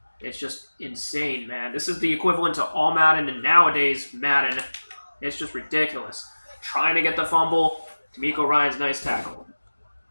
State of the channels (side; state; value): both; inverted; correlation -1.00